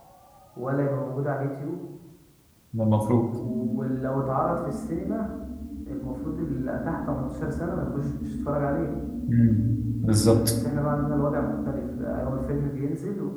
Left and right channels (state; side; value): identical; both; correlation 1.00